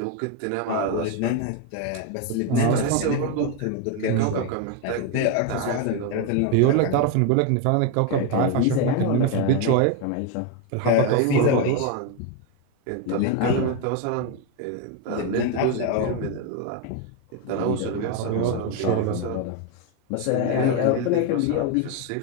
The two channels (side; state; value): both; different; correlation 0.02